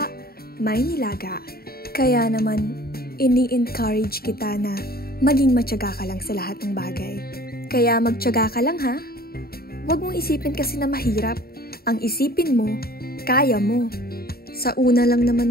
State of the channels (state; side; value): late; right; 0.44 ms